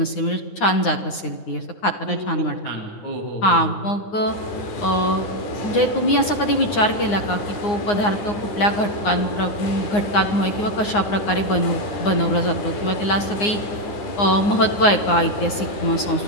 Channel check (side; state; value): right; late; 9.7 ms